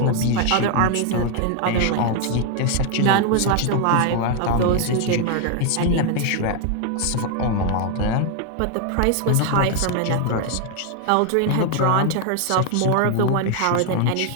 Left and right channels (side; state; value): both; different; correlation 0.00